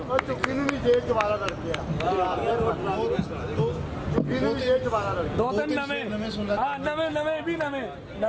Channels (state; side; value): identical; both; correlation 1.00